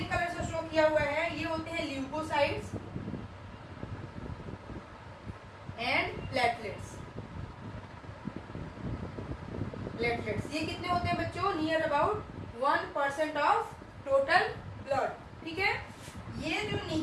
कलर से शो किया हुआ है, ये होते हैं ल्यूकोसाइट्स एंड प्लेटलेट्स। प्लेटलेट्स ये कितने होते हैं बच्चों, near about 1% of total blood, ठीक है। ये जो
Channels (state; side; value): identical; both; correlation 1.00